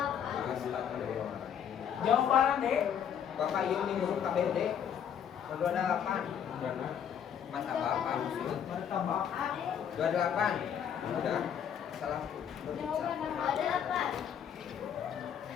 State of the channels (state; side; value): quieter; right; 8.6 dB